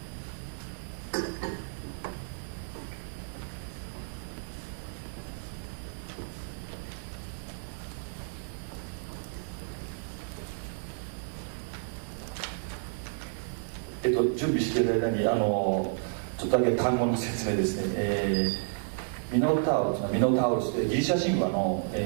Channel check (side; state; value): left; silent; digital silence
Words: 準備している間にちょっとだけ単語の説明ですね。ミノタウルスでギリシャ神話の、